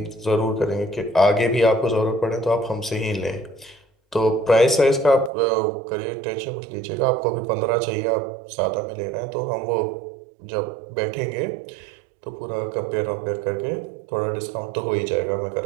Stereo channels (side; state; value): left; drops out; at 5.3 s